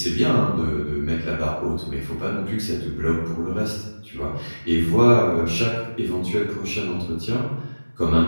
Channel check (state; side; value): inverted; both; correlation -1.00